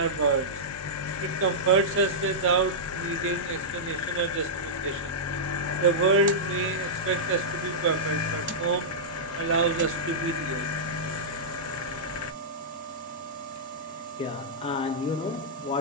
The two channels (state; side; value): normal; both; correlation -0.12